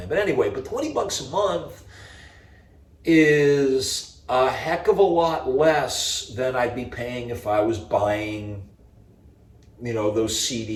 But anyway, but $20 a month is a heck of a lot less than I'd be paying if I was buying, you know, those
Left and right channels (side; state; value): both; identical; correlation 1.00